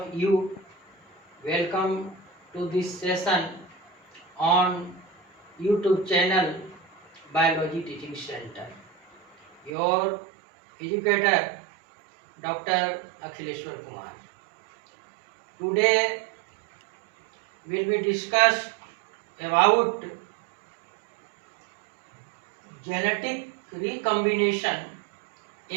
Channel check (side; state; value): left; drops out; at 9.7 s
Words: you. Welcome to this session on YouTube channel Biology Teaching Center. Your educator Dr. Akhileshwar Kumar. Today will be discuss about genetic recombination